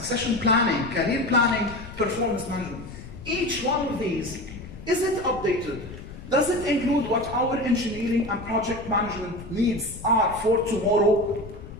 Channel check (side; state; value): left; noise; rumble, 14 dB below the sound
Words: planning, career planning, performance management. Each one of these, is it updated? Does it include what our engineering and project management needs are for tomorrow?